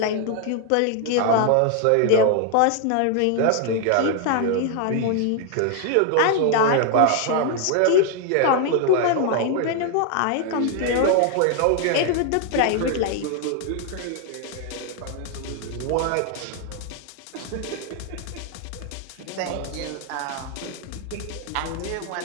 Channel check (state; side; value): different; both; correlation 0.00